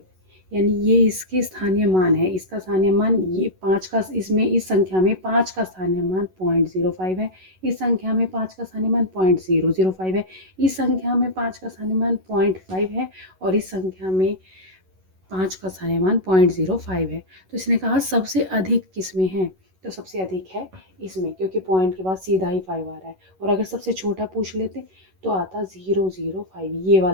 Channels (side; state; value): left; late; 11 ms